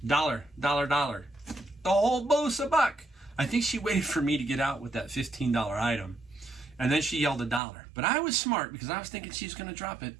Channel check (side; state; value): left; drops out; at 7.6 s